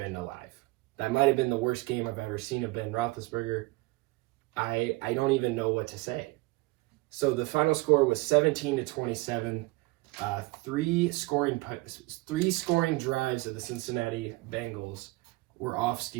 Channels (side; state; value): left; quieter; 23.0 dB